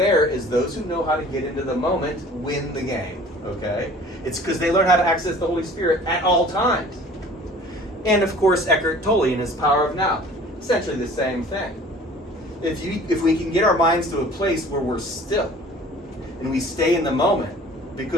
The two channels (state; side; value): normal; both; correlation 0.48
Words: is those who know how to get into the moment win the game, okay? It's because they learn how to access the Holy Spirit at all times. And of course, Eckhart Tolle in his Power of Now, essentially the same thing. If we can get our minds to a place where we're still, and we stay in the moment